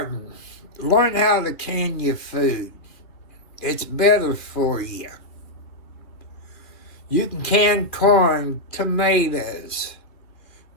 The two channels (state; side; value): late; right; 2.5 ms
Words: Learn how to can your food. It's better for you. You can can corn, tomatoes,